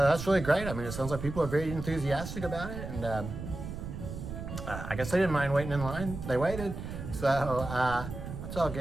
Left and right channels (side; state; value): right; noise; rumble, 8 dB below the sound